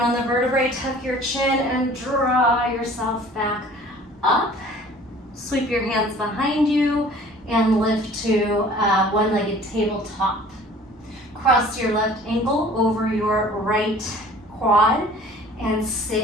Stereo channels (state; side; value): normal; both; correlation 0.49